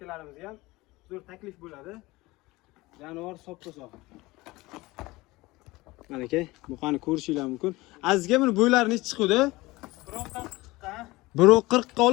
ham zo'r taklif bo'ladi. Jonivor soppa-sog'. Mana aka, buqani ko'rishinglar mumkin. Azizga buni bo'ylari necha chiqdi? 1.40 ga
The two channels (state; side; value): quieter; right; 20.8 dB